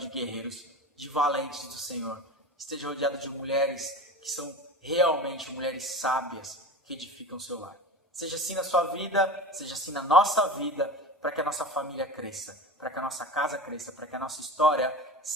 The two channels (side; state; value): both; normal; correlation 0.31